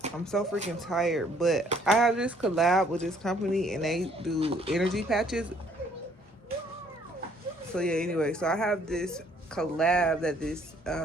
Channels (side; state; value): both; normal; correlation 0.63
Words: so freaking tired, but I have this collab with this company and they do energy patches. So yeah, anyway, so I have this collab that